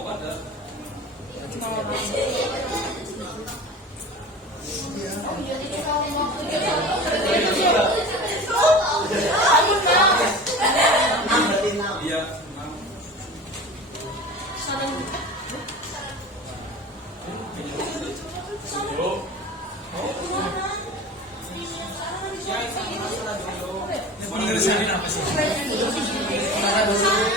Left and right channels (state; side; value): normal; both; correlation 0.35